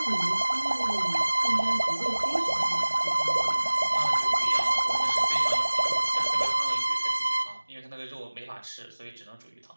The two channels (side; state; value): both; inverted; correlation -1.00